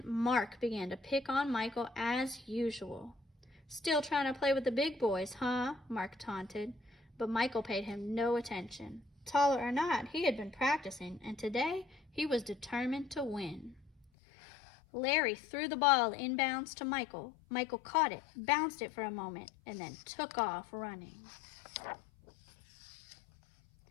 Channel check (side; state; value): right; drops out; at 14.1 s